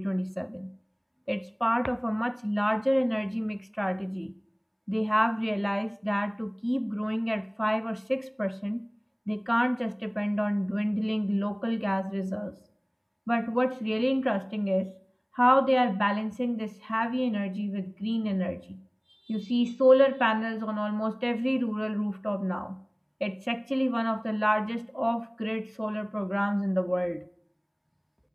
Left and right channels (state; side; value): identical; both; correlation 1.00